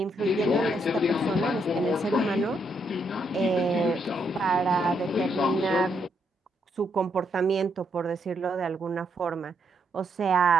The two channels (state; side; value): normal; both; correlation 0.76